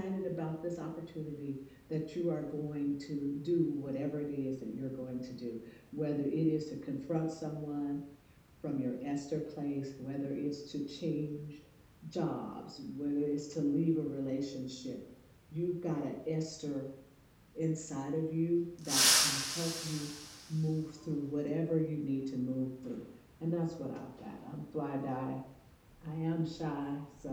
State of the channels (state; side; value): identical; both; correlation 1.00